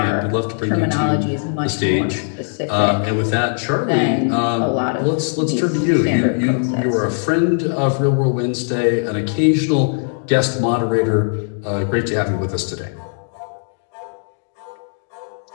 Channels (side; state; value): right; silent; digital silence